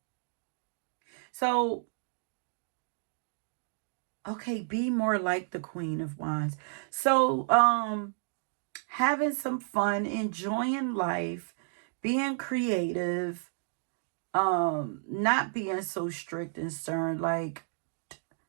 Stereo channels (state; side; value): silent; left; digital silence